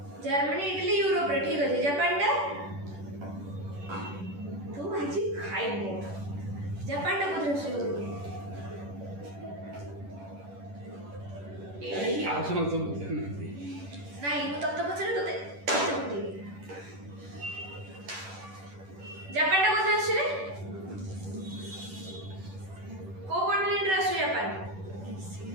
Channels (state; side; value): late; left; 10 ms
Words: जर्मनी इटली यूरोप रे ठीक अछि जापान टा तू आजी खाइ मो जापान टा कोन राष्ट्र हो ए आउसन तो नाही मु तत्त पछरे तते जापान टा कोन राष्ट्र रे को कॉन्टिनेंट राष्ट्र जापान